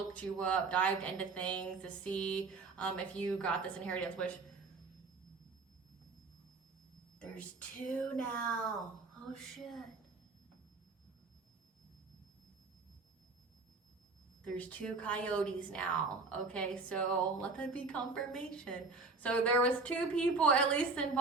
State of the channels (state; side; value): quieter; left; 3.9 dB